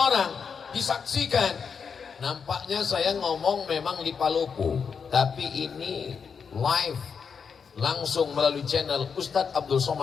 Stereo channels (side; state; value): right; quieter; 6.2 dB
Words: disaksikan. Nampaknya saya ngomong memang di Palopo, tapi ini live, langsung melalui channel Ustadz Abdul